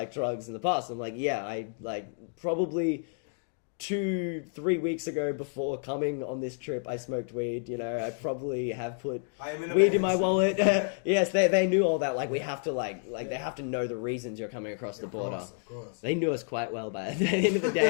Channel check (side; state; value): right; silent; 58 dB below the other